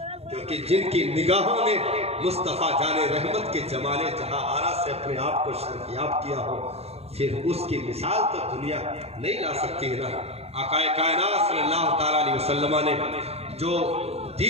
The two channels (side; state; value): left; late; 0.30 ms